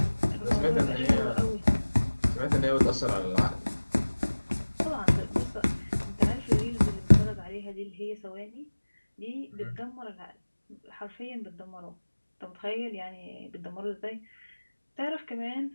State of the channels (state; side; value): inverted; both; correlation -1.00